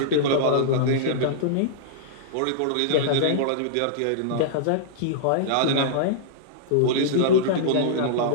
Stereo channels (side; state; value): both; different; correlation -0.03